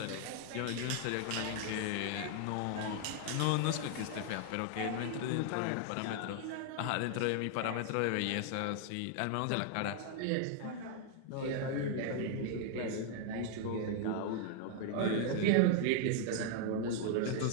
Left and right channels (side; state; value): both; different; correlation 0.00